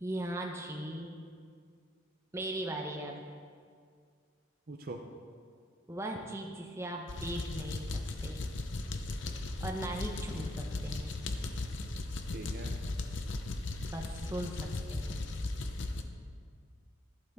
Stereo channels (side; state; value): both; normal; correlation 0.74